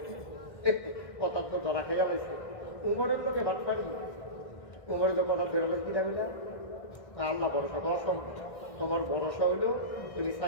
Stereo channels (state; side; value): late; right; 1.6 ms